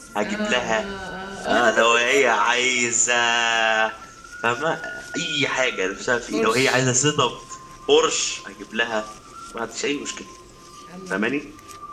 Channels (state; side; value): identical; both; correlation 1.00